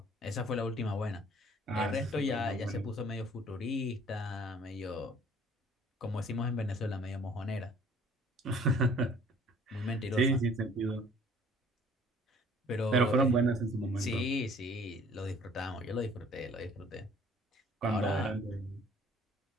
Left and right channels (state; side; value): normal; both; correlation 0.54